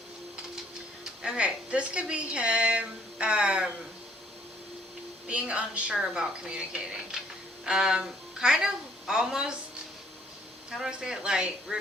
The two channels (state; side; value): normal; both; correlation 0.63